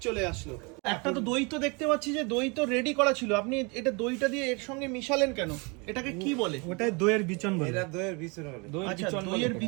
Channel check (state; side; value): quieter; left; 30.3 dB